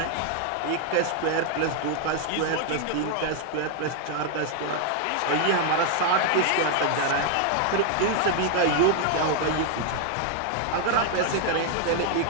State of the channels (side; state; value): both; different; correlation 0.00